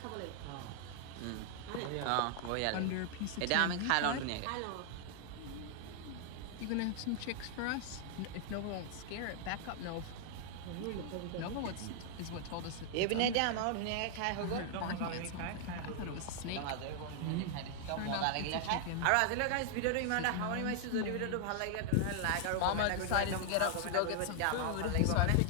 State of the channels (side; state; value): both; different; correlation 0.00